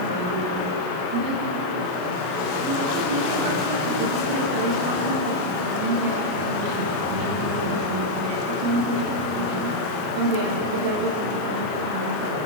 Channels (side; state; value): left; late; 33 ms